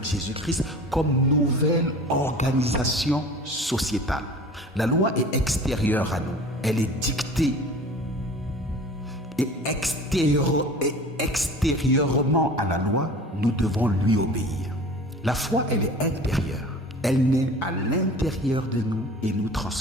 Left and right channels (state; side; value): normal; both; correlation 0.41